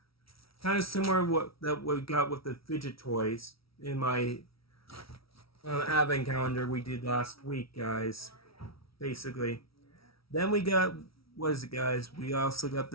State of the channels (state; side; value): late; right; 0.75 ms